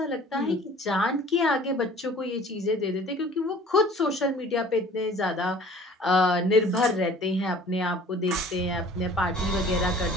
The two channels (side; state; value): both; normal; correlation 0.49